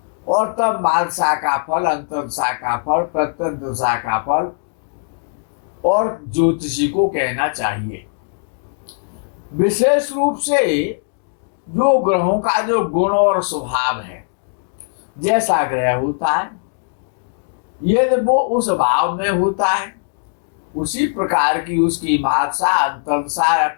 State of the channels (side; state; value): right; silent; digital silence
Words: और तब महादशा का फल, अंतर्दशा का फल, प्रत्यंतरदशा का फल और ज्योतिषी को कहना चाहिए। विशेष रूप से जो ग्रहों का जो गुण और स्वभाव है, जैसा ग्रह होता है यदि वो उस भाव में होता है, उसी प्रकार की उसकी महादशा, अंतर्दशा या